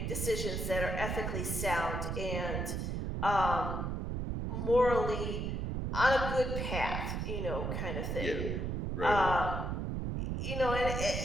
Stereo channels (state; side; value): noise; right; rumble, 2 dB below the sound